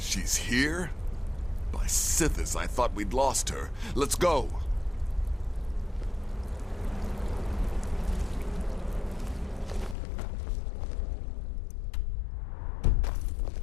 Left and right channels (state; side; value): drops out; right; at 10.0 s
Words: here? By Sithis, I thought we'd lost her. Let's go.